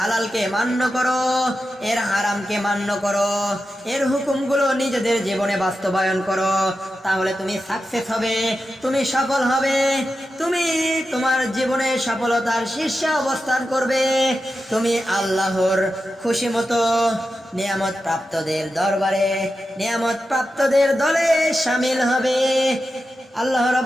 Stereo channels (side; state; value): both; normal; correlation 0.90